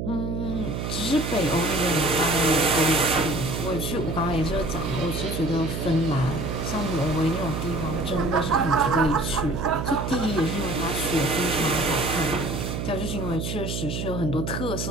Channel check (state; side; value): noise; right; hum, 3 dB below the sound